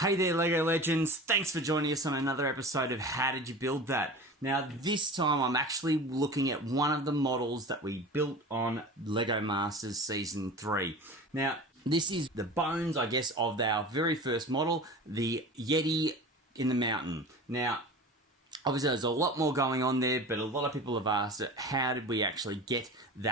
there LEGO Legends, thanks for joining us on another episode of How Did You Build That? Now this time I'm actually looking at one of the models that we built on LEGO Masters Season 3. Now this is the bones, I guess, of our very first model, the Yeti in the mountain. Now obviously there's a lot more going on there, but a lot of people have asked how did we actually get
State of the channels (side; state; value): both; normal; correlation 0.35